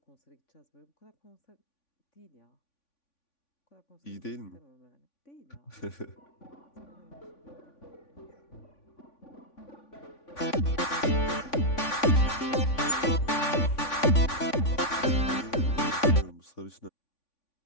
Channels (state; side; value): late; right; 3.5 ms